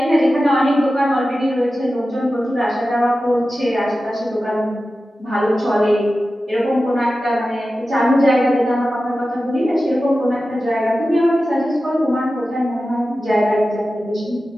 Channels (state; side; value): normal; both; correlation 0.94